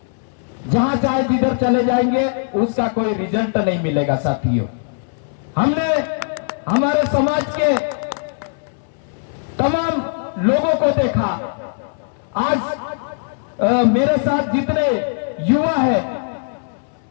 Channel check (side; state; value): right; silent; digital silence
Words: जहां चाहे जिधर चले जाएंगे, उसका कोई रिजल्ट नहीं मिलेगा। साथियों, हमने हमारे समाज के तमाम लोगों को देखा। आज मेरे साथ जितने युवा है,